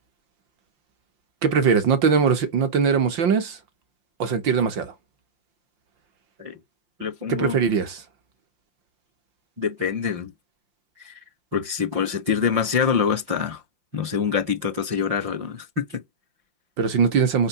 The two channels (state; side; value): late; left; 5.7 ms